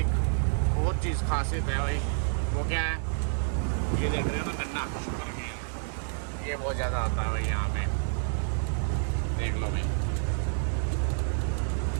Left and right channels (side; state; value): left; silent; digital silence